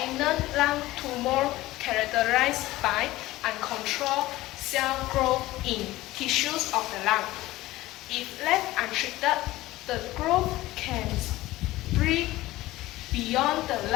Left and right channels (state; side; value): quieter; right; 17.4 dB